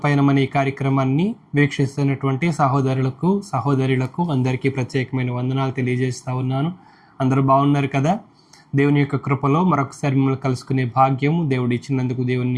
పయనమనే ఈ కార్యక్రమాన్ని వీక్షిస్తున్నటువంటి సహోదరులకు అందరికీ ప్రత్యేకమైన వందనాలు తెలియజేస్తూ ఉన్నాను. అందరూ బాగున్నారు కదా? దేవుని యొక్క కృపలో మరొకసారి మిమ్మల్ని కలుసుకునే భాగ్యం దేవుడు ఇచ్చినందుకు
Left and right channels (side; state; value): both; identical; correlation 1.00